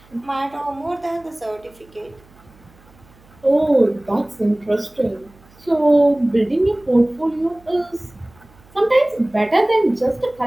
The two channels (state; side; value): noise; right; hum, 28 dB below the sound